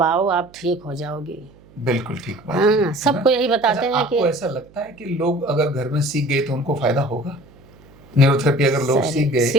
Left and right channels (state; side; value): noise; right; hum, 26 dB below the sound